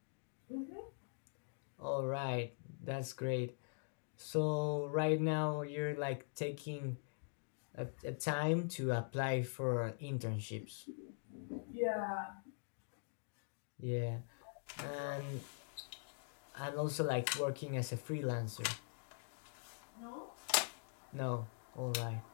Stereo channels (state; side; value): silent; right; digital silence